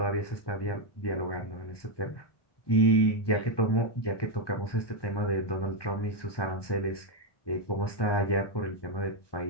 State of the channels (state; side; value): late; right; 1.1 ms